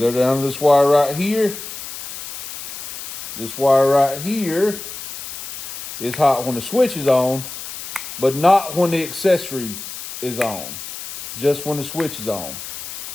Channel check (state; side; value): noise; left; hiss, 9 dB below the sound